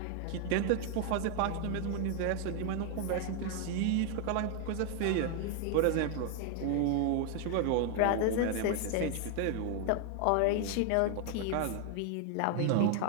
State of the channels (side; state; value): both; different; correlation 0.00